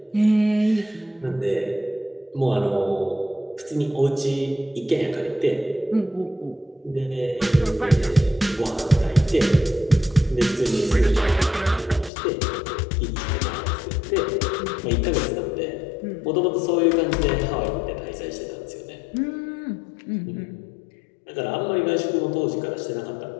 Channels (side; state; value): right; drops out; at 12.1 s